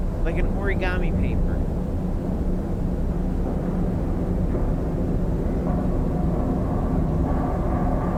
like an origami paper.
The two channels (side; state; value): both; identical; correlation 1.00